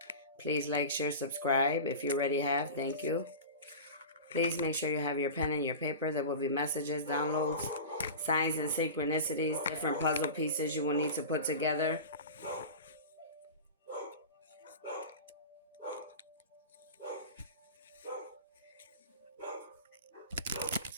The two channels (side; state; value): both; inverted; correlation -0.31